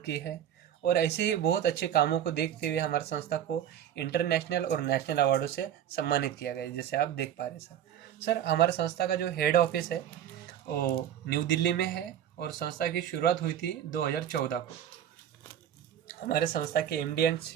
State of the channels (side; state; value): left; quieter; 10.3 dB